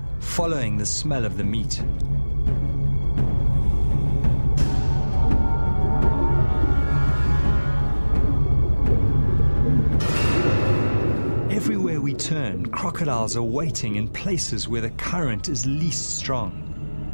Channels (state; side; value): inverted; both; correlation -1.00